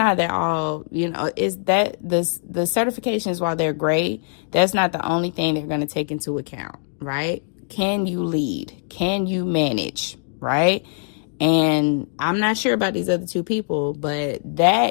at all, is that the certifications, while they're great, that's not the only thing they're going to take into account, right? Can you lead? Can you manage, right? And I'm not sure about these other two people, but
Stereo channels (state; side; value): silent; right; digital silence